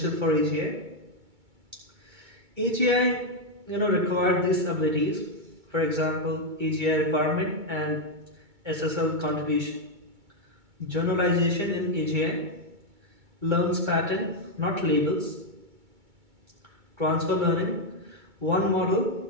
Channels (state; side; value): late; left; 2.2 ms